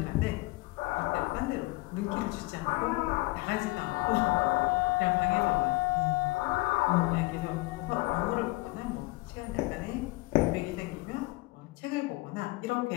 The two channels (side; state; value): right; quieter; 22.6 dB